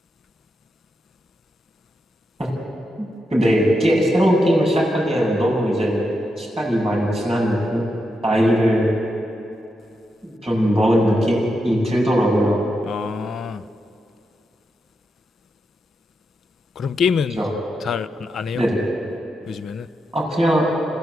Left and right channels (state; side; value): normal; both; correlation 0.85